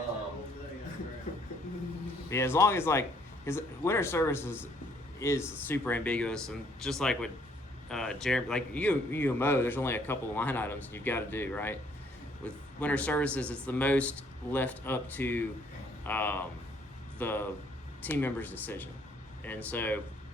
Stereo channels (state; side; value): normal; both; correlation 0.65